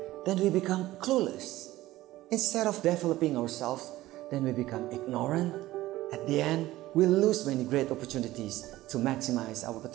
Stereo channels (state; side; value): quieter; left; 16.5 dB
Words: then we become clueless. Instead of developing ourselves, then we become ignorant. At the end, we lose many great opportunities to maximize our